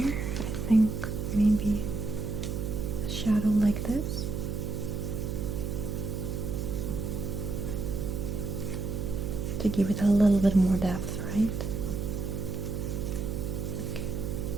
I think maybe a shadow like this. To give it a little bit more depth, right? Okay.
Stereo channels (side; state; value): right; noise; hum, 3 dB below the sound